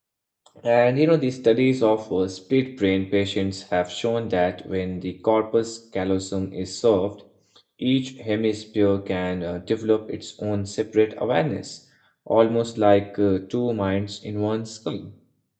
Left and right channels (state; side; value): identical; both; correlation 1.00